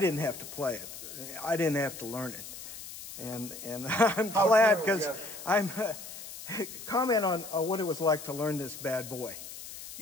have to play it. I didn't have to learn it. And I'm glad, because I'm comment on what it was like to learn this bad boy.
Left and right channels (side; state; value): left; noise; hiss, 12 dB below the sound